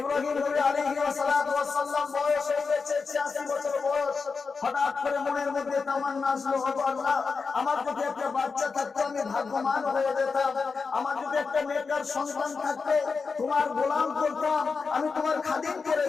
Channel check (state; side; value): quieter; right; 4.8 dB